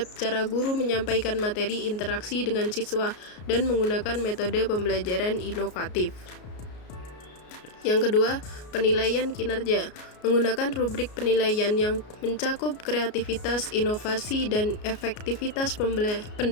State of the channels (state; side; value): late; right; 33 ms